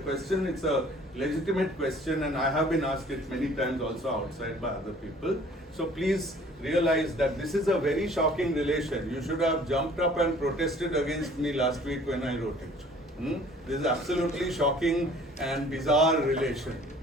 question. It's a legitimate question, and I have been asked it many times also outside by other people. So please realize that this is a very shocking relation. You should have jumped up and protested against me last week when I wrote it. This is absolutely shocking and bizarre relation.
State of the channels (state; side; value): normal; both; correlation 0.52